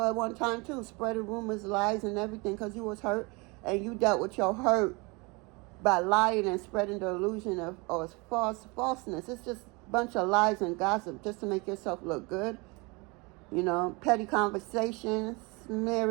at one time too, spreading rumors, lies, and everything because you was hurt, and you dealt with your hurt by lying and spreading the illusion of falseness. It's just a bunch of lies and gossip just to make yourself look good. You know, petty conversations,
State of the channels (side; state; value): left; quieter; 27.5 dB